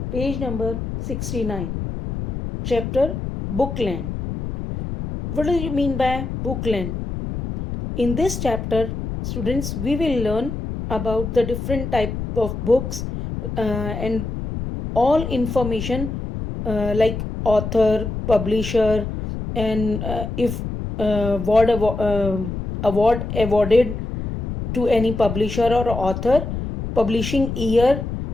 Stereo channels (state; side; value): noise; left; rumble, 5 dB below the sound